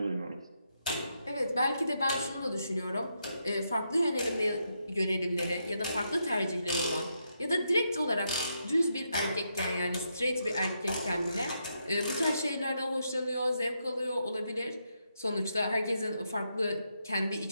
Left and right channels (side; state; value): both; inverted; correlation -0.81